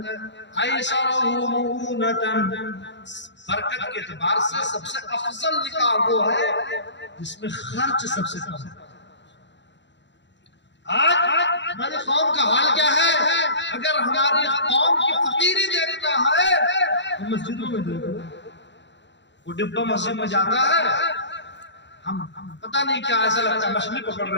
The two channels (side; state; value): right; late; 0.52 ms